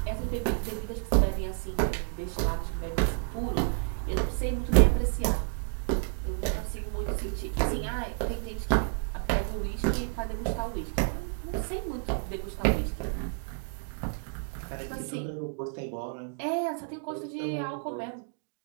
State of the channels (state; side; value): silent; left; 58 dB below the other